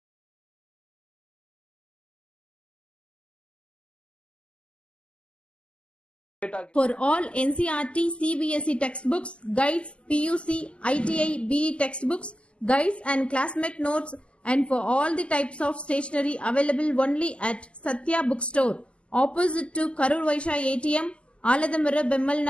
For all NCERT, CBSE textbooks, guides, PUC, ITI, BE textbooks, guides and classmate notes, and for all the types of stationery available only at Satya Bookstore, opposite to Karur Vaishya ATM, Aladamara Bemmal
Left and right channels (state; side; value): late; right; 0.054 ms